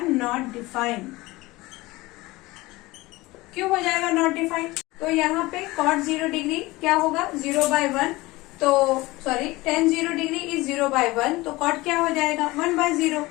नॉट डिफाइन। क्यों हो जाएगा नॉट डिफाइन, तो यहाँ पे cot 0 डिग्री क्या होगा 0/1, तो सॉरी tan 0 डिग्री इज 0/1, तो cot क्या हो जाएगा 1/0।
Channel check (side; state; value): right; quieter; 20.6 dB